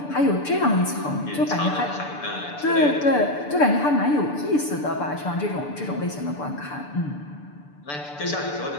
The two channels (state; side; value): late; right; 6.8 ms